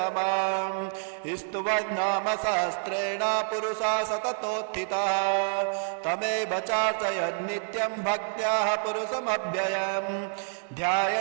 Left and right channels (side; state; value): left; silent; digital silence